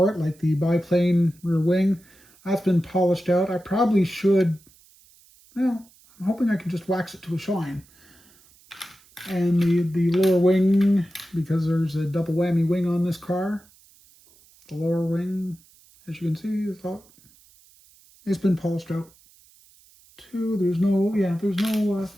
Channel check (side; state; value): right; noise; hiss, 28 dB below the sound